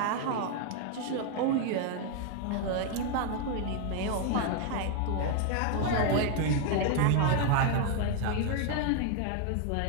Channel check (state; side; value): different; both; correlation 0.01